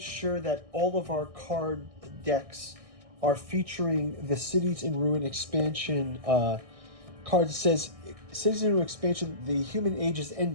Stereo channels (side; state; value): left; late; 1.6 ms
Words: sure that all of our card decks are featuring the Cities in Ruin expansion card. It says, Cities in Ruin expansion, the human age is